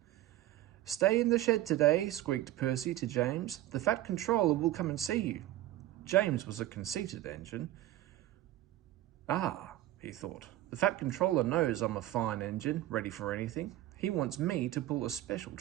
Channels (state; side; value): quieter; left; 14.6 dB